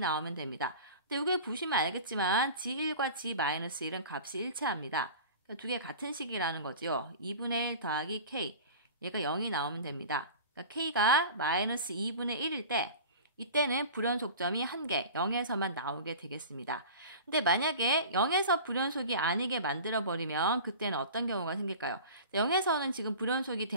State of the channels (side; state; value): both; inverted; correlation -0.38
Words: 됩니다. 근데 여기 보시면 알겠지만 g1과 g-1은 값이 일치합니다. 그러니까 두 개 같은 식이라는 거죠. 2분의 1 더하기 k 얘가 0이 나오면 됩니다. 그러니까 k가 마이너스 2분의 1일 때 이때는 불연속점이 한 개, 0에서만 나오게 되겠습니다. 근데 만약에 0에서 불연속이 아니게 만들어버리면 그때는 어떤 경우가 생길까요? 0에서는 지금 불연속이